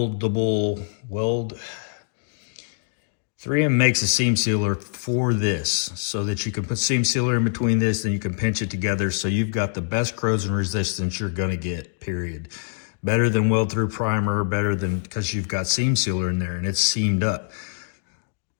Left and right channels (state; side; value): silent; right; digital silence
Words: weld. 3M makes a seam sealer for this so that you can put seam sealer in between this, and you can pinch it together, so you've got the best corrosion resistance you're gonna get, period. Better than weld through primer, better than, because you've got seam sealer in there and it's seamed up.